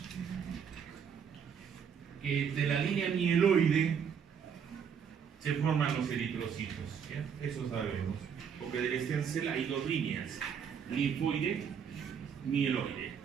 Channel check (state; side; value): quieter; left; 7.3 dB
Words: que de la línea mieloide se forman los eritrocitos, ¿ya? Eso sabemos, porque del stem cell hay dos líneas, linfoide, mieloide.